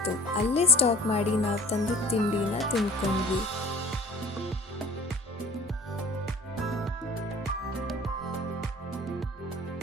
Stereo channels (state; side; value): normal; both; correlation 0.45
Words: ಅಲ್ಲೇ ಸ್ಟಾಪ್ ಮಾಡಿ ನಾವು ತಂದಿದ್ದ ತಿಂಡಿನ ತಿಂದ್ಕೊಂಡ್ವಿ.